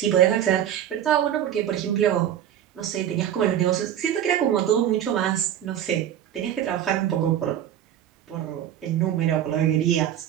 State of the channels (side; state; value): left; quieter; 10.6 dB